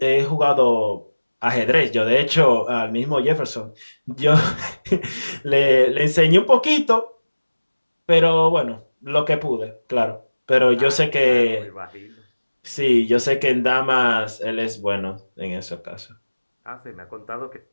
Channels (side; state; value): both; inverted; correlation -1.00